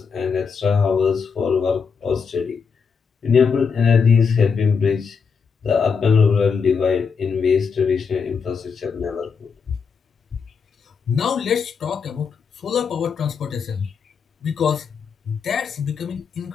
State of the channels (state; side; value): quieter; right; 5.8 dB